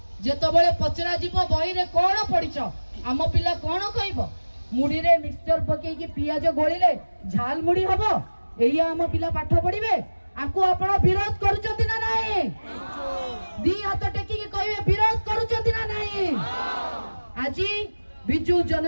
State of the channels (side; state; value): both; inverted; correlation -1.00